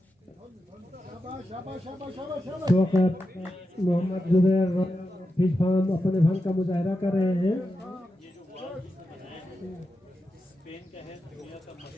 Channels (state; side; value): normal; both; correlation 0.89